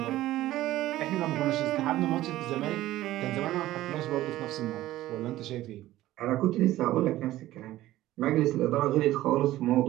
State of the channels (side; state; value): left; quieter; 15.3 dB